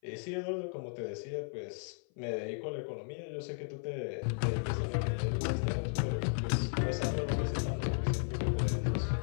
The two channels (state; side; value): silent; right; 55 dB below the other